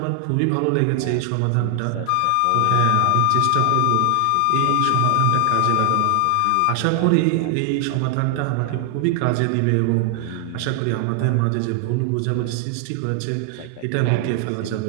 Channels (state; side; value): different; both; correlation 0.00